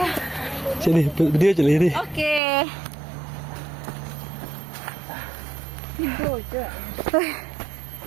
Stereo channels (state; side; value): drops out; left; at 2.4 s